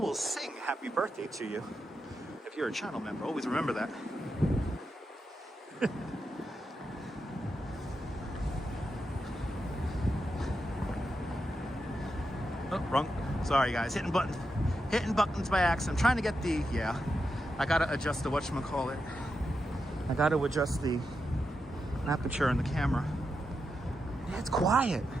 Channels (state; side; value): normal; both; correlation 0.86